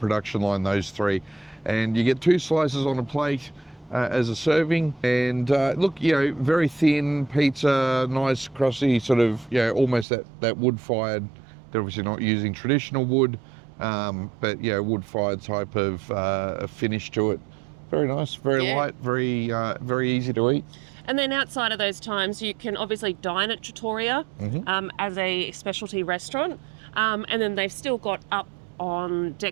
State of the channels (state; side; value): drops out; left; at 10.1 s